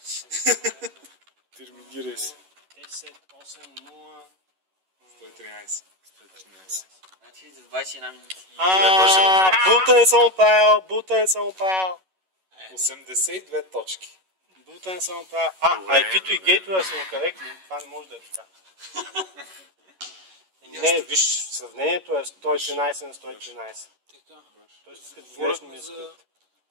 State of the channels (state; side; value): late; left; 11 ms